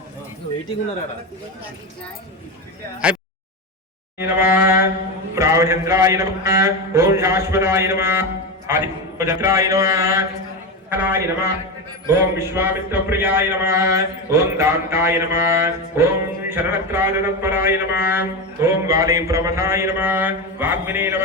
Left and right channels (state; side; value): normal; both; correlation 0.17